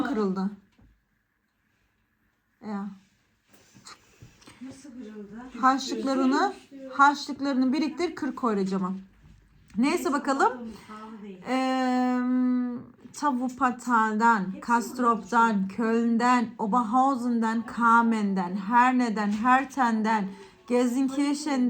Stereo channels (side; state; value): both; identical; correlation 1.00